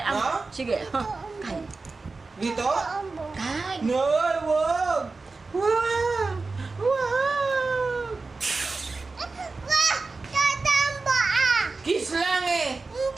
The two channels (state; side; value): quieter; left; 3.8 dB